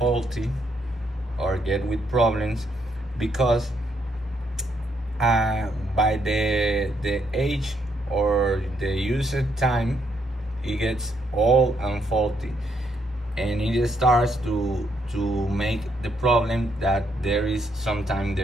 or get with problems because by the age or the usage time, it gets old and faulty, and it starts to make the problem that sometimes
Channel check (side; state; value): both; normal; correlation 0.74